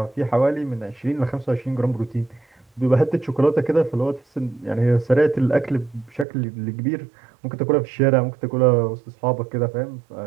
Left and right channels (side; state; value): left; drops out; at 6.2 s